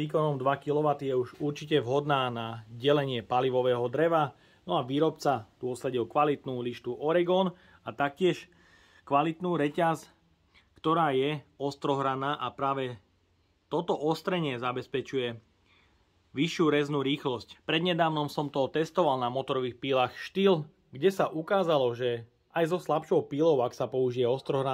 2 kW je už určite vhodná na delenie palivového dreva, no a výrobca tu osadil kvalitnú lištu Oregon a taktiež kvalitnú reťaz, ktorá je ostrohraná a práve toto ostrenie zabezpečuje vyššiu reznú rýchlosť. Prednedávnom som to testoval na motorových pílach Stihl, kde sa ukázalo, že aj so slabšou pílou, ak sa použije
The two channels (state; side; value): identical; both; correlation 1.00